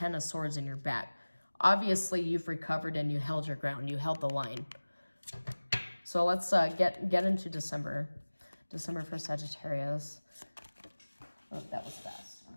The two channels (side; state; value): both; inverted; correlation -1.00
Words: of Swords in your back. Obviously, you've recovered and you held your ground. You held the line. So let's get into December. December for Sagittarius. Oh, that was fast.